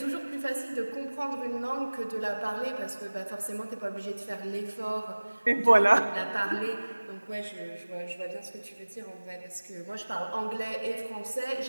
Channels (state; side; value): inverted; both; correlation -1.00